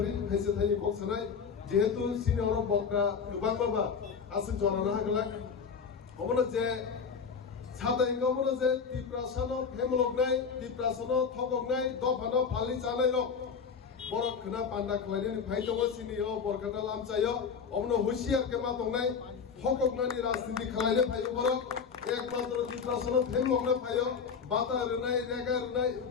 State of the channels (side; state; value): right; quieter; 6.1 dB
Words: খাইছে tiny ককসানাই যেহেতু senior বকরা গোবাং বাবা আছে জনানা হাগলাক অমনে যে সাদাই গমনে যে ত্রিপ্রাসানো ফেমলকনাই ত্রিপ্রাসানো থককনাই দফানো ফালি জানাই রক বড় খনা পান্ডা খলাইনি ফাই দङ সিনিয় বরকাটা লামচাयो অমনে হুশিয়ার কে মা দংনাই থককনানি রাজনীতি খলাইনে ফাই বড় একমাত্র ত্রিপ্রাসানো ফেমলকনা ফাইयो বাতা রনাই রেগা রনাই